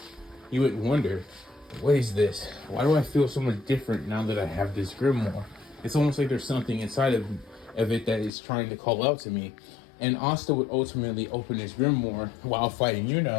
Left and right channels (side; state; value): right; drops out; at 8.3 s